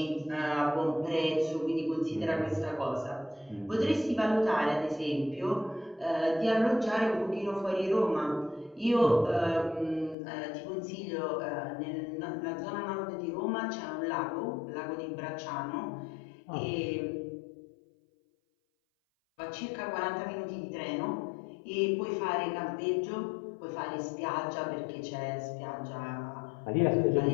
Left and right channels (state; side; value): drops out; right; at 10.2 s